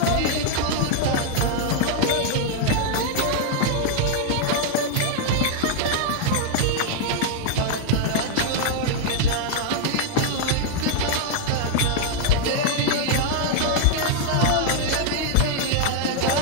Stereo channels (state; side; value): different; both; correlation 0.00